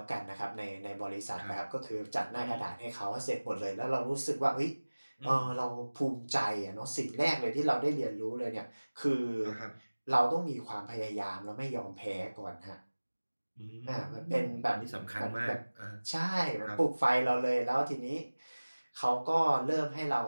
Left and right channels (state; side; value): inverted; both; correlation -1.00